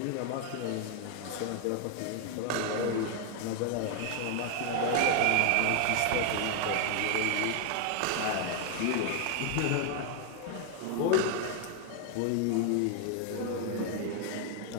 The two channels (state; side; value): different; both; correlation 0.00